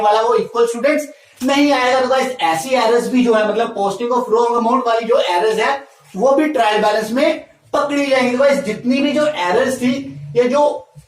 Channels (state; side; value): identical; both; correlation 1.00